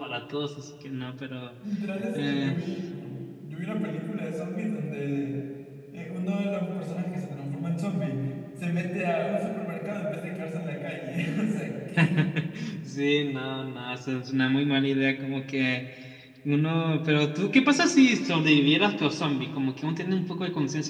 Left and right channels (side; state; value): both; identical; correlation 1.00